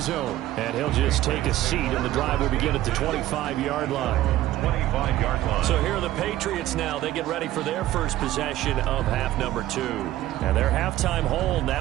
zone. And he'll just take a seat, and the drive will begin at the 25-yard line. 25-yard line. So here are the Patriots now. They get ready for their first possession of half number 2. And their halftime hole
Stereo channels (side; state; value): left; quieter; 14.6 dB